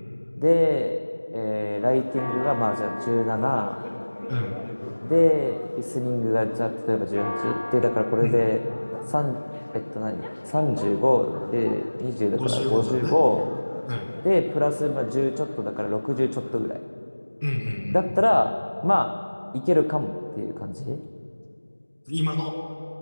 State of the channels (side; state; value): both; inverted; correlation -1.00